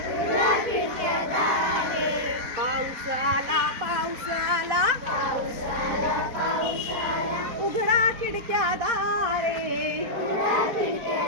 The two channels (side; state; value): left; late; 4.2 ms